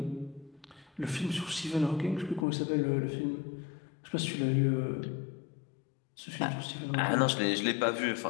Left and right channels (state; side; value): drops out; right; at 2.5 s